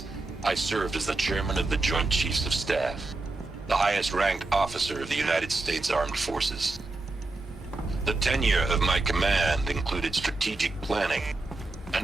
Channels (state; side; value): quieter; left; 3.2 dB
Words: I served as the chairman of the Joint Chiefs of Staff, the highest-ranked officer of the United States Armed Forces. The tenure of my command included strategic planning